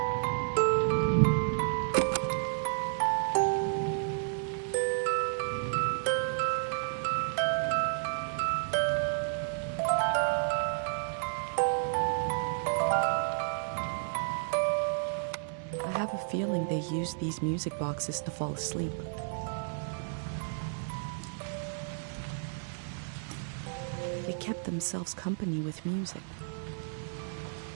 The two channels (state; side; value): silent; left; 56 dB below the other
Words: I have a feeling they use these music boxes to fall asleep. They kept themselves company with music.